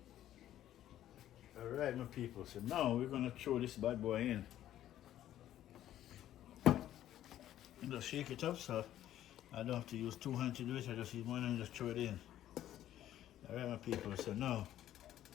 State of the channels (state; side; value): quieter; right; 12.4 dB